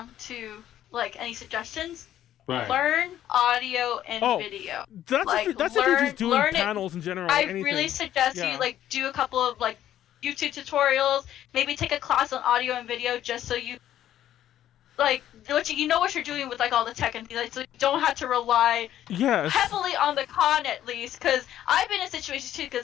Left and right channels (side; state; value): right; quieter; 11.8 dB